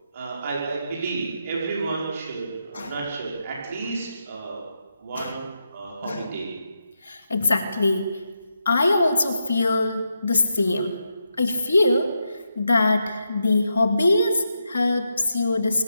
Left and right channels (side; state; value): both; inverted; correlation -0.85